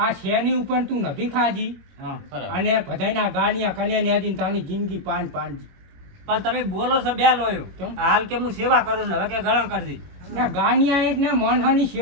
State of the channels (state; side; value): late; left; 23 ms